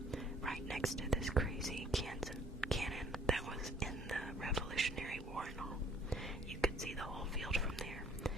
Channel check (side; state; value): both; normal; correlation 0.59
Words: right next to this crazy cannon that was in the Revolutionary War and all. You could see the whole field from there,